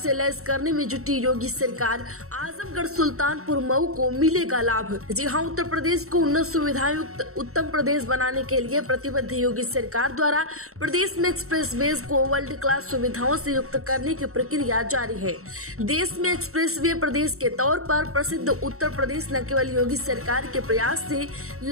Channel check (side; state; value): left; late; 0.64 ms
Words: लैस करने में जुटी योगी सरकार। आजमगढ़ सुल्तानपुर मऊ को मिलेगा लाभ। जी हां, उत्तर प्रदेश को उन्नत सुविधाएं युक्त उत्तम प्रदेश बनाने के लिए प्रतिबद्ध योगी सरकार द्वारा प्रदेश में एक्सप्रेसवेज को वर्ल्ड क्लास सुविधाओं से युक्त करने की प्रक्रिया जारी है। देश में एक्सप्रेसवे प्रदेश के तौर पर प्रसिद्ध उत्तर प्रदेश न केवल योगी सरकार के प्रयास से